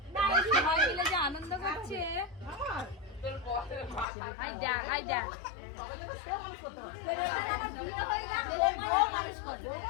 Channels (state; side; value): drops out; right; at 4.0 s